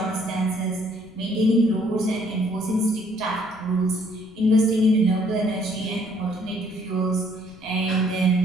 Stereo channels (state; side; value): noise; left; rumble, 26 dB below the sound